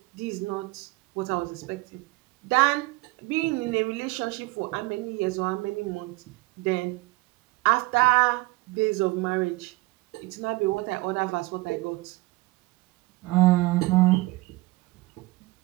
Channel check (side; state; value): left; quieter; 21.9 dB